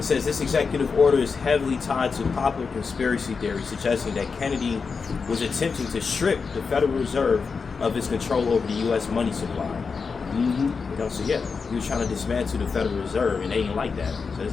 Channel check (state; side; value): quieter; right; 5.1 dB